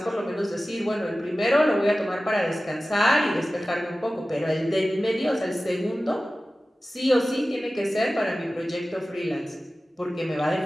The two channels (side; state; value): both; normal; correlation 0.96